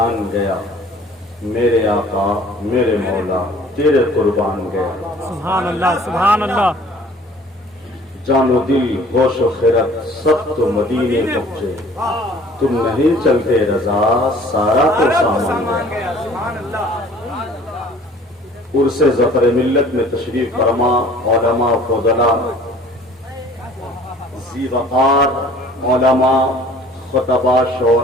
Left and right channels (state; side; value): normal; both; correlation 0.51